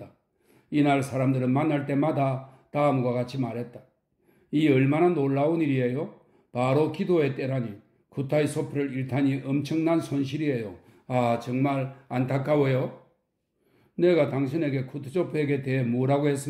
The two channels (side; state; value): both; identical; correlation 1.00